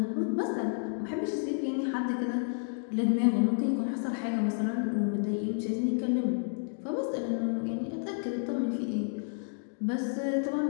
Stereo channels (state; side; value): silent; right; digital silence